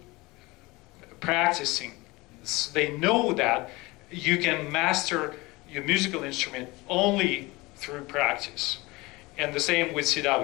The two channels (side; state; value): right; quieter; 22.6 dB